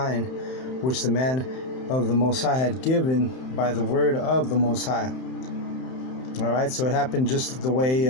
which the man of the Most High had given by the word of the Most High." All right, so it happened just the way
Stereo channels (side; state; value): right; late; 31 ms